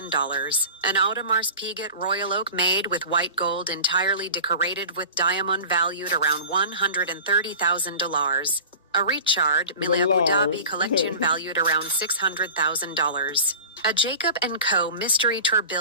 an Audemars Piguet Royal Oak made with white gold entirely decorated with diamond valued around $130,000, a Richard Mille Abu Dhabi collection valued around $600,000, a Jacob & Co. mystery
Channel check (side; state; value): both; inverted; correlation -0.38